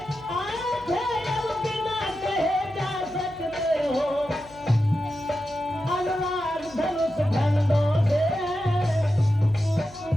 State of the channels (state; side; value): noise; left; hum, 23 dB below the sound